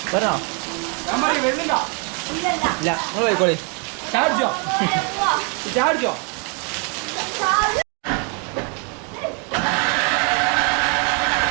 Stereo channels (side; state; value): left; quieter; 36.5 dB